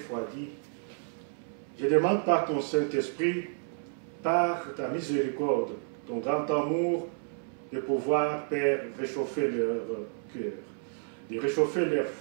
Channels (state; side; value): silent; left; 57 dB below the other